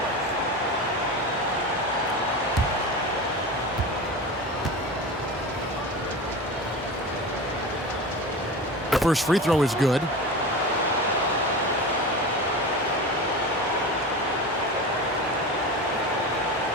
The first free throw is good.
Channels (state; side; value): normal; both; correlation 0.28